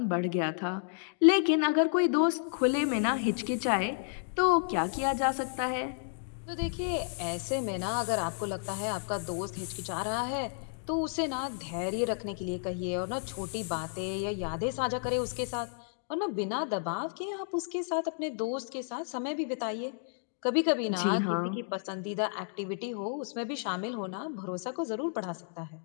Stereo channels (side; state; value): right; silent; digital silence